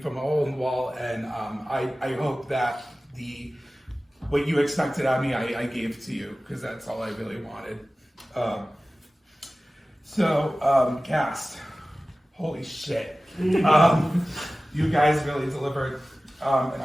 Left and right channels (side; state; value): both; normal; correlation 0.97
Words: a hole in the wall, and I hope that what you expected out of me, I gave to you, because that's all I really wanted. Cast. Holy shit. You guys really delivered, and